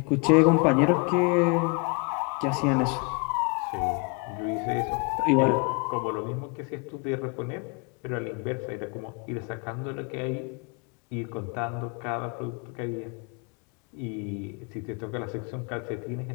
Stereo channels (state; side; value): quieter; right; 33.0 dB